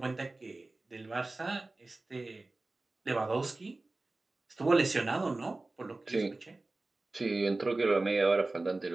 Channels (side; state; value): left; quieter; 3.1 dB